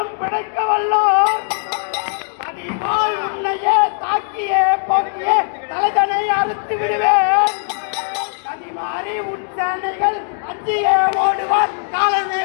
பிழைக்க வல்லோர் அதிபால் உன்னையே தாக்கியே போக்கியே தலைதனை அறுத்து விடுவேன். கதிமாறி உன் சேனைகள் அஞ்சியே ஓடுவார் காலமே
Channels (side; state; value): right; silent; digital silence